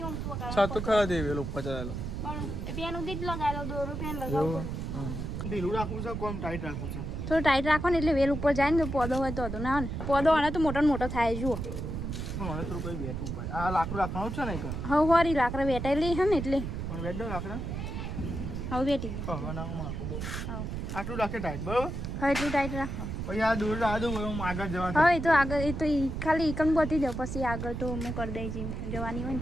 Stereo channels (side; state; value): right; noise; rumble, 5 dB below the sound